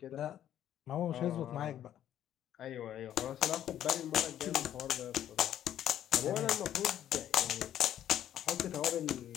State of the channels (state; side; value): quieter; right; 11.1 dB